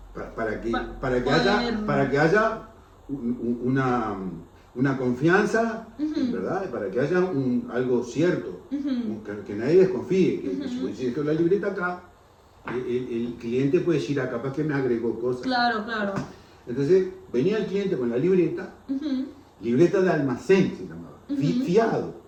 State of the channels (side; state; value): both; identical; correlation 1.00